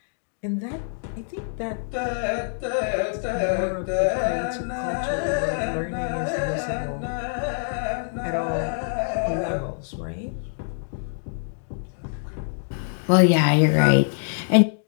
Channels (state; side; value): silent; right; digital silence